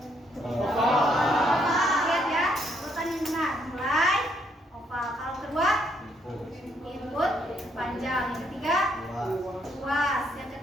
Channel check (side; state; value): both; normal; correlation 0.71